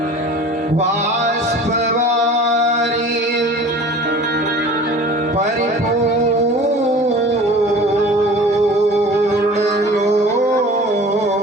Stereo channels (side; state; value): both; normal; correlation 0.43